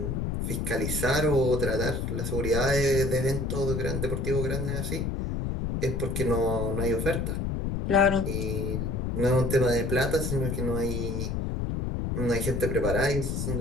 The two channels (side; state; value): left; noise; rumble, 1 dB below the sound